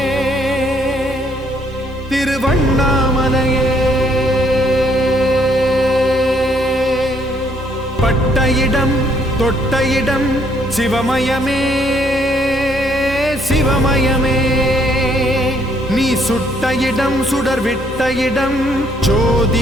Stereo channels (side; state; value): both; normal; correlation 0.68